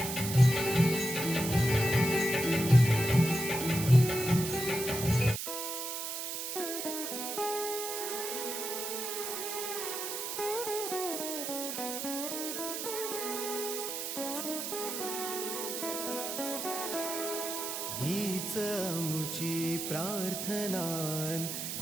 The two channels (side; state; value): right; noise; hiss, 4 dB below the sound